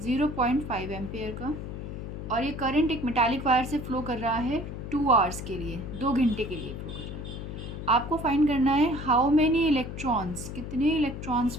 एम्पेयर का और ये करंट एक मेटालिक वायर से फ़्लो कर रहा है 2 आवर्स के लिए, 2 घंटे के लिए फ़्लो कर रहा है। आपको फाइंड करना है हाउ मेनी इलेक्ट्रॉन्स, कितने इलेक्ट्रॉन्स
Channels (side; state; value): left; noise; hum, 8 dB below the sound